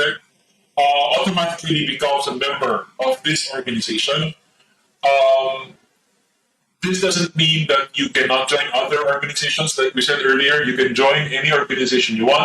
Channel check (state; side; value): identical; both; correlation 1.00